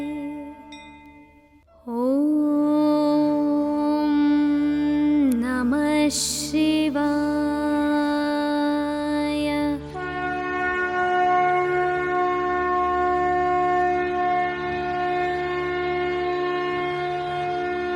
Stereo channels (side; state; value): both; identical; correlation 1.00